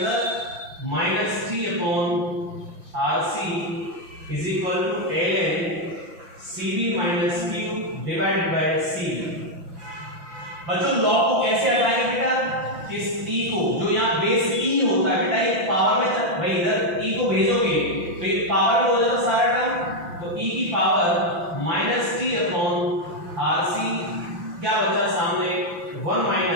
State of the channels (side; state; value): left; late; 5.9 ms